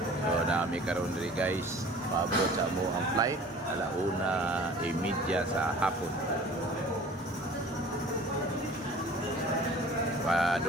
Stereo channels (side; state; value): both; normal; correlation 0.46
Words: So, nami karon diri guys. Paabot sa mo ang flight alauna media sa hapon.